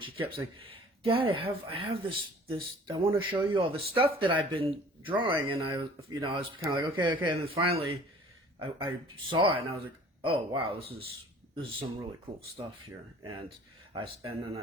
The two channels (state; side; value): normal; both; correlation 0.50